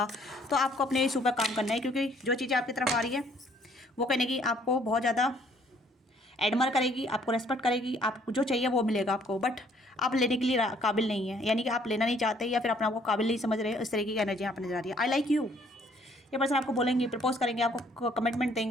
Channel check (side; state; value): both; normal; correlation 0.62